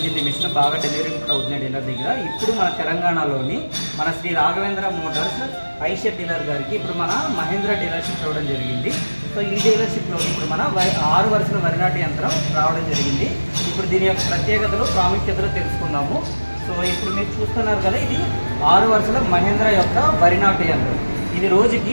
మిషన్. బాగా డెలివరీ కూడా అవుతున్నాయి డీలర్ దగ్గర. ఇప్పుడు మన తెలంగాణలోని మన శ్రీ రాఘవేంద్ర మోటార్స్ ఐషర్ డీలర్ గారికి ఇప్పుడు మన మహేంద్ర డీలర్షిప్ రావడం జరిగింది. సో ఈ డీలర్షిప్లో ఇప్పుడు మన 6 వరుసల వరి నాటు యంత్రం రావడం జరిగింది. ఇప్పుడు దీని యొక్క ప్రత్యేకతలు ప్రాముఖ్యతలు తెలుసుకుందాము. సో ఇప్పుడు మీరు చూస్తున్నారు కదా, ఇది 6 వరుసల మహేంద్ర యొక్క వరి నాటు యంత్రం. ఇది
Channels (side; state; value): both; inverted; correlation -1.00